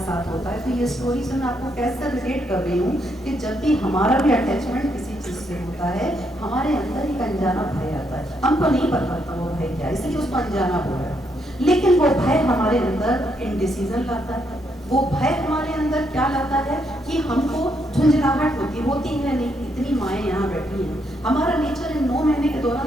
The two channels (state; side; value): normal; both; correlation 0.76